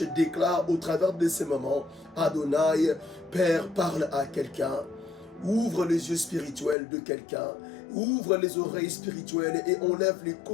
déclare au travers de ces moments, Adonai, Père, parle à quelqu'un. Ouvre les yeux spirituels de quelqu'un, ouvre les oreilles spirituelles et enlève les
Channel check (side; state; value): right; drops out; at 6.8 s